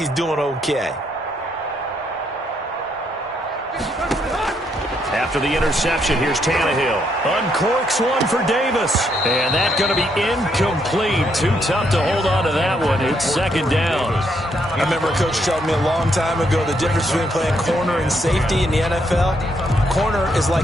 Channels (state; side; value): normal; both; correlation 0.74